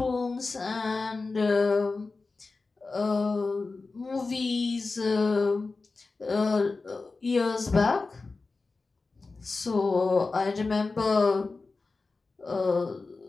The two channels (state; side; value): quieter; right; 3.9 dB